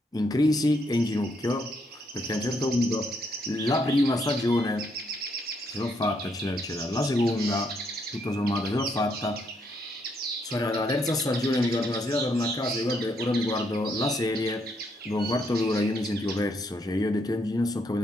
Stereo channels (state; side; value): normal; both; correlation 0.74